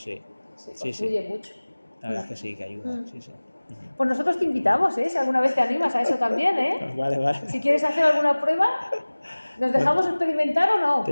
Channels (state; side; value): inverted; both; correlation -1.00